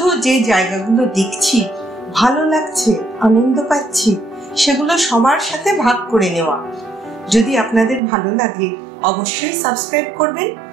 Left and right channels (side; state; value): left; drops out; at 8.0 s